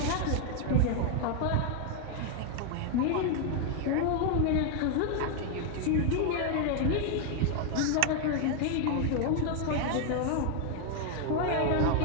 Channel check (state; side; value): different; both; correlation 0.00